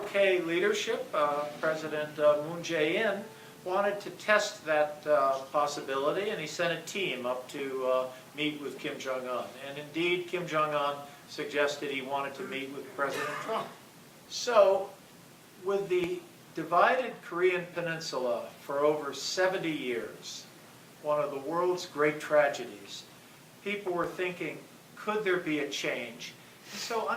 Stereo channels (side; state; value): both; identical; correlation 1.00